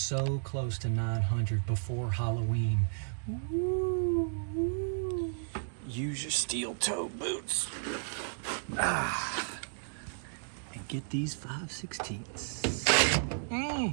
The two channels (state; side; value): silent; left; digital silence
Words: close to 900 before Halloween. Woo. Use your steel toe boots. And get these 5/16.